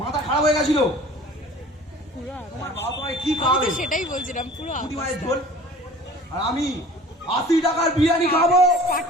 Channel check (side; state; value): both; normal; correlation 0.45